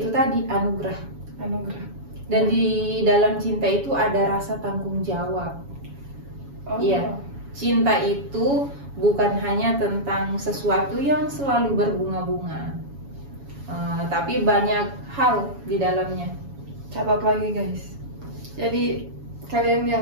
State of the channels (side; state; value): left; late; 7.2 ms